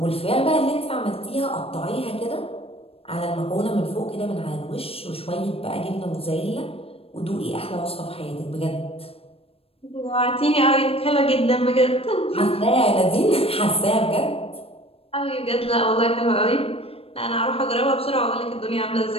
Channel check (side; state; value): right; late; 0.28 ms